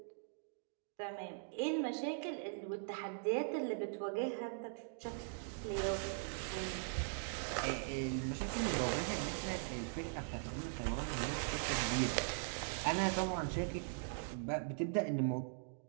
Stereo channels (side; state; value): left; silent; digital silence